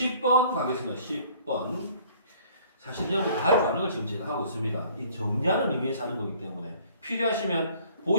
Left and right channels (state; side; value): inverted; both; correlation -0.55